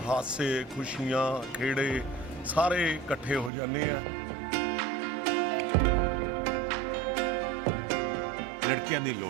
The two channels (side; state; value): left; drops out; at 3.5 s